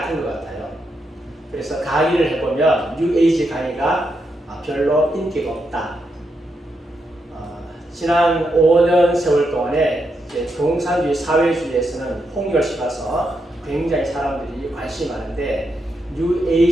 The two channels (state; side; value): normal; both; correlation 0.82